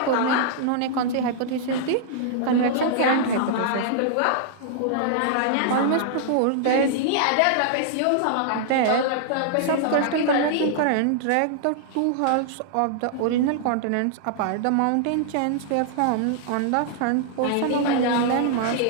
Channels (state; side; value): different; both; correlation -0.01